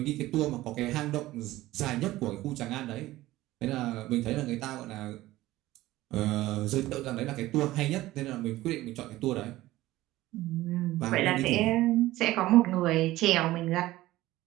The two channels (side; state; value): left; quieter; 16.7 dB